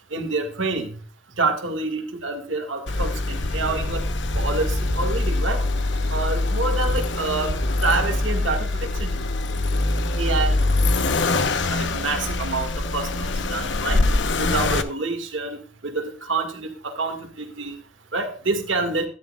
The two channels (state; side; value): normal; both; correlation 0.50